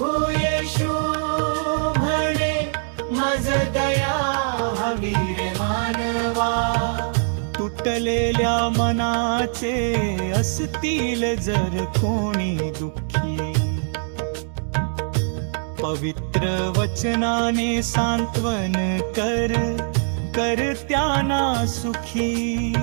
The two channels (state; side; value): silent; left; digital silence